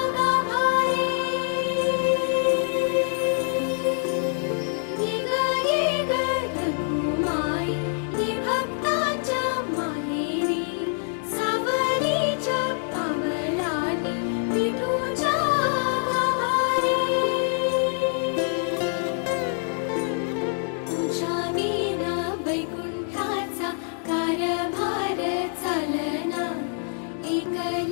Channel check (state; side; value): silent; right; 55 dB below the other